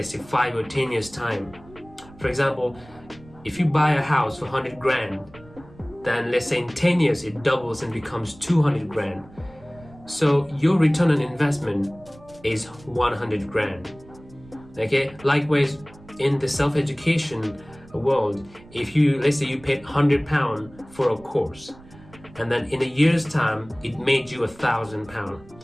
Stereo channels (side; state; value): right; noise; rumble, 23 dB below the sound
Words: say, 5 or 10 years time? For example, if you buy a house for 100 grand, then let's say in 10 years it doubles and becomes 200 grand. So your return on investment is 100 grand. Okay, likewise in the self-education world, if let's say you paid £100 for a course, and then in a year's time it made you £1,000.